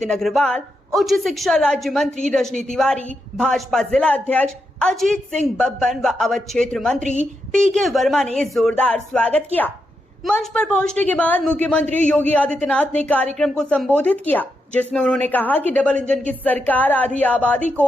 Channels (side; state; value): both; normal; correlation 0.84